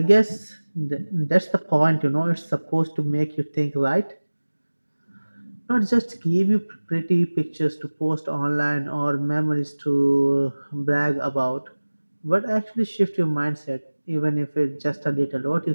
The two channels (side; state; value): both; inverted; correlation -1.00